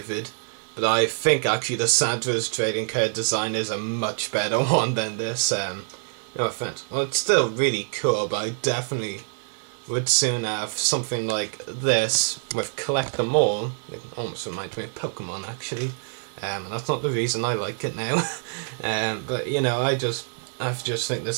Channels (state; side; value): silent; left; 61 dB below the other